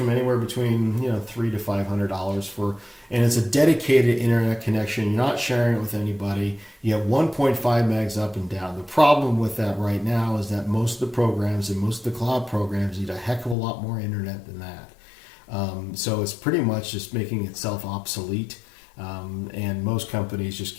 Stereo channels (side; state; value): right; drops out; at 13.6 s